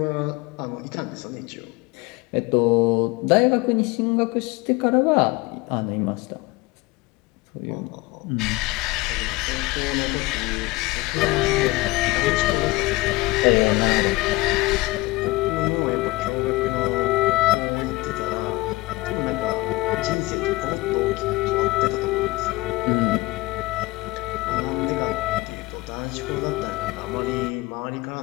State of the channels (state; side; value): quieter; right; 21.2 dB